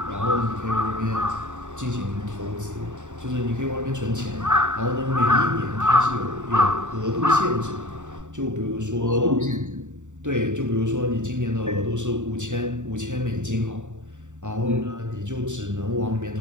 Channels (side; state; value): left; late; 0.85 ms